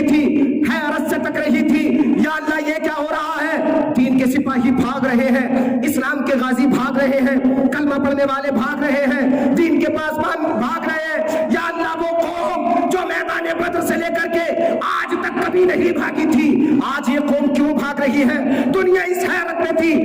थी, हैरत से तक रही थी, या अल्लाह ये क्या हो रहा है? दीन के सिपाही भाग रहे हैं, इस्लाम के गाजी भाग रहे हैं, कलमा पढ़ने वाले भाग रहे हैं, दीन के पासबान भाग रहे हैं। या अल्लाह वो कौम जो मैदान बद्र से लेकर के आज तक कभी नहीं भागी थी, आज ये कौम क्यों भाग रही है? दुनिया इस हैरत में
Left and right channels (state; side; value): identical; both; correlation 1.00